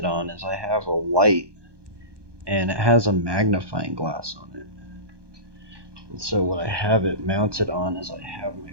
on is I have a light and it has a magnifying glass on it. And so what I have it mounted on is I have my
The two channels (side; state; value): left; late; 1.2 ms